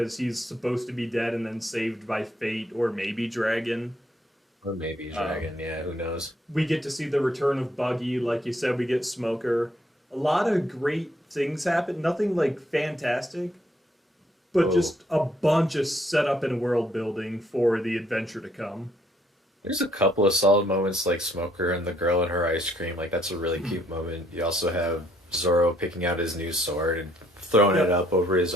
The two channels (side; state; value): both; normal; correlation 0.68